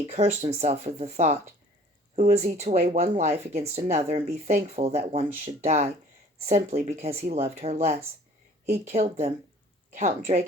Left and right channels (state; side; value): normal; both; correlation 0.51